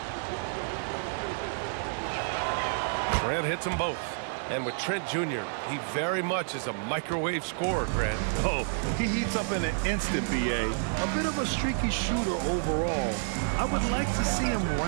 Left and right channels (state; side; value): silent; left; digital silence